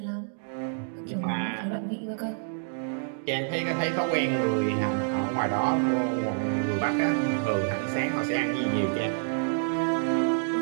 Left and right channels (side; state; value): left; silent; digital silence